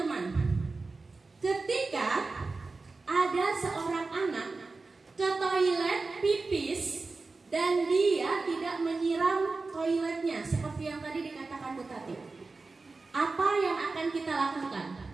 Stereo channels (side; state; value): left; quieter; 3.8 dB